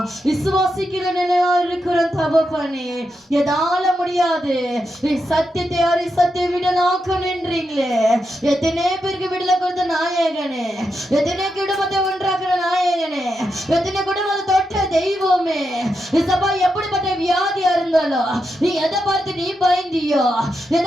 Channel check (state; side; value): normal; both; correlation 0.85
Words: விசுவாசிக்கிற நிலையா இருக்கிறோம் தகப்பனே. எதால முடியாது சத்தியத்தை யாரை சத்திய விடலாக்க நின்றீங்களே. எத்தனை பேருக்கு விடல கொடுத்த நாயகனே, எத்தனை குடும்பத்தை ஒன்றாக்குற நாயகனே, எத்தனை குடும்பத்தை தொட்ட தெய்வமே. இசப்பா எப்படிப்பட்ட வியாதியா இருந்தாலும் நீ எதை பார்த்து நீ பயந்தியோ,